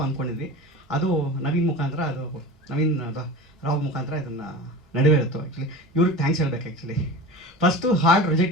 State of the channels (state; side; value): normal; both; correlation 0.32